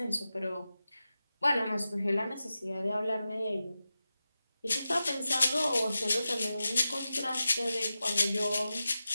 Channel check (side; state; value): both; inverted; correlation -0.93